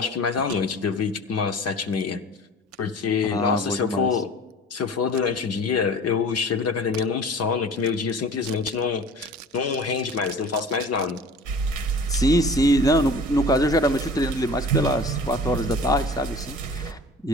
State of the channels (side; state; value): both; normal; correlation 0.42